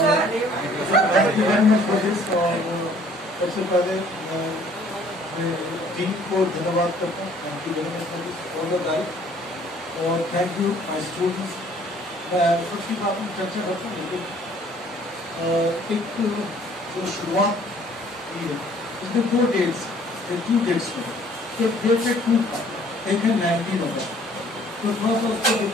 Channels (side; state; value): both; normal; correlation 0.57